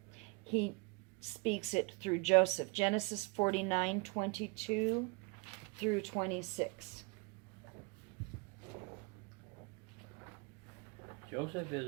he speaks it through Joseph. Genesis 49:22 through 26. Joseph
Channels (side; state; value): left; quieter; 28.6 dB